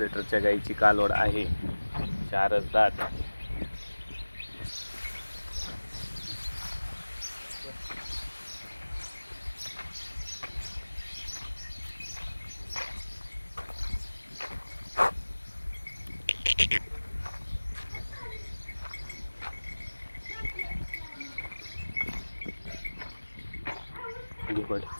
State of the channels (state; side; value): inverted; both; correlation -1.00